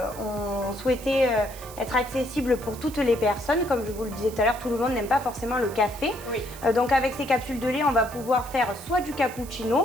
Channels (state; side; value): noise; right; hiss, 16 dB below the sound